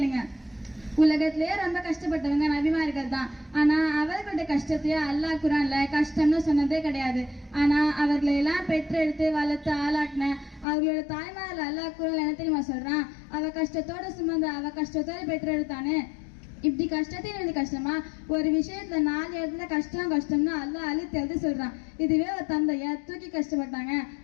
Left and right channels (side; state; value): right; drops out; at 10.7 s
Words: உலகத்திலேயே ரொம்ப கஷ்டப்பட்டவங்க நபிமார்கள் தான். ஆனா அவர்களுடைய கஷ்டத்தையே அல்லாஹ் குர்ஆன்ல கஷ்டம்னு சொன்னதே கிடையாது. ஆனா அவர்களை எல்லாம் பெற்றெடுத்து வளர்த்து ஆளாக்கின அவர்களோட தாய்மார்கள் அல்லாஹ் குர்ஆன்ல என்ன தெரியுமா சொல்றான்? அவ கஷ்டத்தோட சுமந்த அவ கஷ்டத்தோட பெற்றெடுத்தானே. இப்படி கஷ்டத்தையும் எழுதி கஷ்டமா? ஒரு விஷயத்துல 4 இடத்துல கஷ்டம்னு அல்லாஹ் அழுத்தி எழுதி சொல்றான். இதுவே ஒரு தந்தைய தூக்கி கஷ்டப்பட்டாங்க,